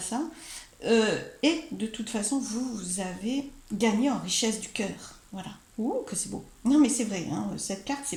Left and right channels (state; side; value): identical; both; correlation 1.00